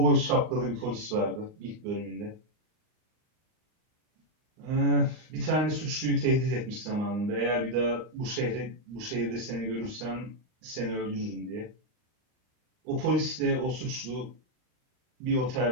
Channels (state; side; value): late; left; 39 ms